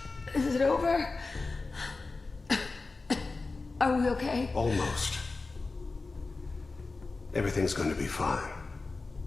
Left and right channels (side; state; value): right; quieter; 3.7 dB